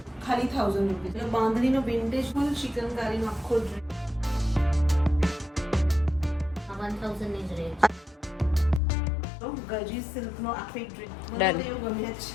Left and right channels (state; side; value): drops out; right; at 8.8 s